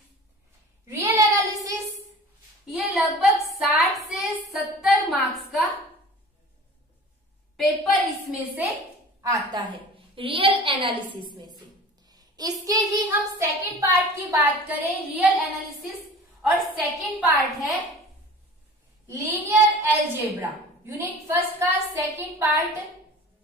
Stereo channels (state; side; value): normal; both; correlation 0.41